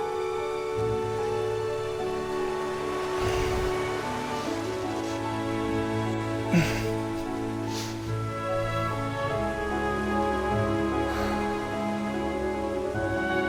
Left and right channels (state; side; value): identical; both; correlation 1.00